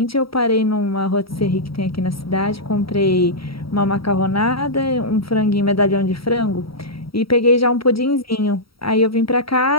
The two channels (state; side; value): late; right; 0.75 ms